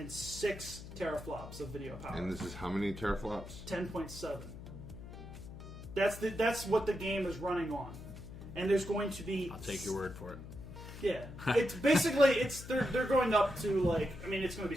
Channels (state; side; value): noise; left; hum, 12 dB below the sound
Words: 6 teraflops of video power. And this is how many teraflops? 10.7. That's what the game is running on. And there's going to be... I'll take your word for it. Yeah, it's basically they're going up to like, I mean, it's going to be